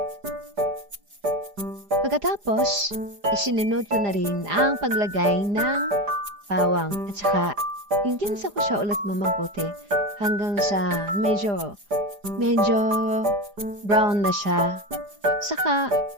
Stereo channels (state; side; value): late; left; 4.9 ms